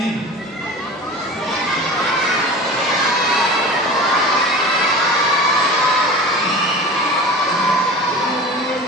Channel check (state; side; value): normal; both; correlation 0.35